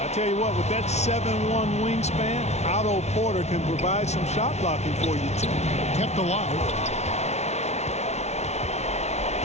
I tell you what, with that 7'1" wingspan, Otto Porter can provide some shot blocking for you, too. Kept alive.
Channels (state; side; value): late; right; 0.32 ms